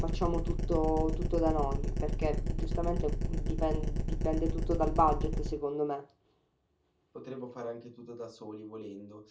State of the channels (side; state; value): both; identical; correlation 1.00